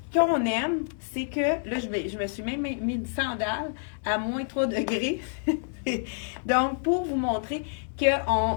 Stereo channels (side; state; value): right; silent; digital silence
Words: Ce qu'on aime, c'est que, là, je me suis même mis une sandale à moins 3 degrés. Donc, pour vous montrer que